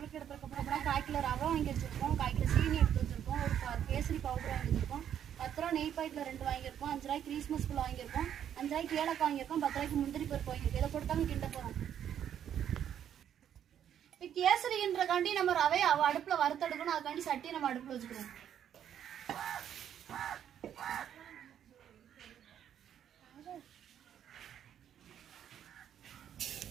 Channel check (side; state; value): left; quieter; 9.7 dB